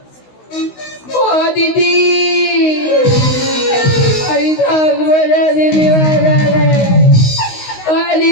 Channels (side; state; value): right; late; 16 ms